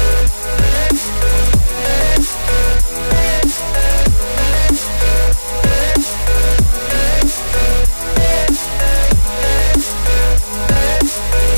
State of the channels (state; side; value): inverted; both; correlation -1.00